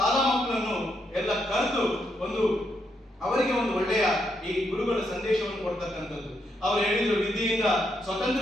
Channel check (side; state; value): both; normal; correlation 0.79